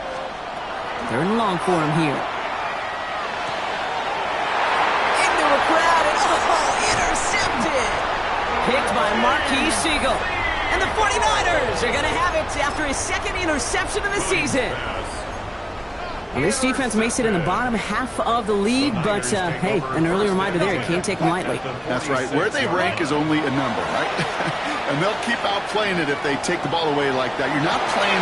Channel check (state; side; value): identical; both; correlation 1.00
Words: Third and long for him here. Into a crowd, and intercepted! Picked by Marquis Siegel. And the 49ers are going to have it after his second interception of the season. Well, this defense may sit in the bottom half of the league, but, hey, an early reminder there, you can't take them lightly. That's right. Where they rank is only a number, right? And they'll keep outplaying it if they take the ball away like that. You're not